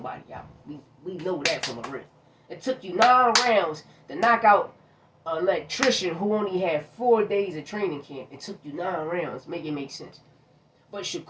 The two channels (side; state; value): both; identical; correlation 1.00